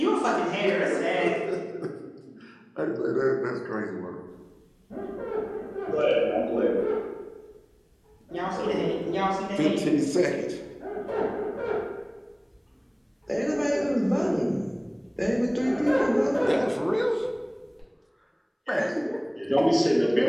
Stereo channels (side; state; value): both; identical; correlation 1.00